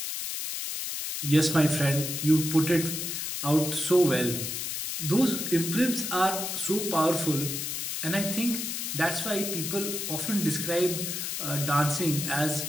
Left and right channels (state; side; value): noise; left; hiss, 3 dB below the sound